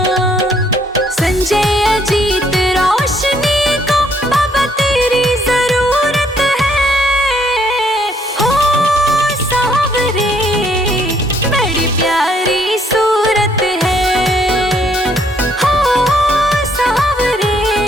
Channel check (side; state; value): both; normal; correlation 0.67